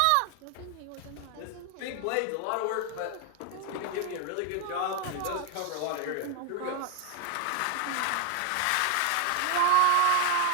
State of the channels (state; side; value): different; both; correlation 0.00